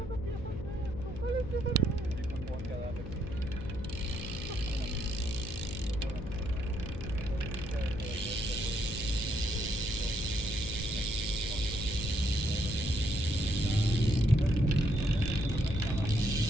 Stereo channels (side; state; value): left; noise; hum, 9 dB below the sound